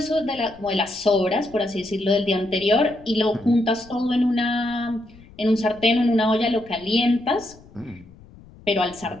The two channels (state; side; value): noise; left; rumble, 23 dB below the sound